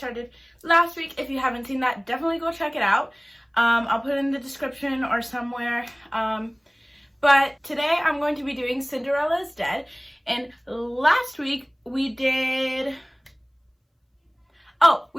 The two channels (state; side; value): identical; both; correlation 1.00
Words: last week. If you haven't seen that, definitely go check it out. I'll put it in the description or somewhere. But today I'm going to be doing Cinderella is Dead. And last week we did